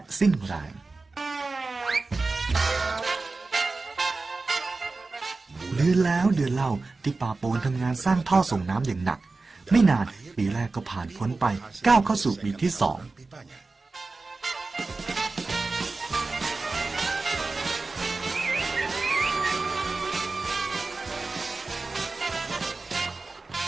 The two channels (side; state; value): left; quieter; 3.7 dB